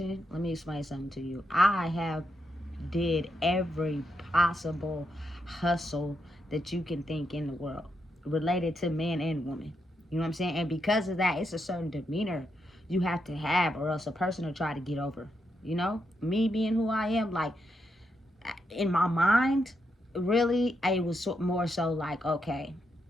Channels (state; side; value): normal; both; correlation 0.82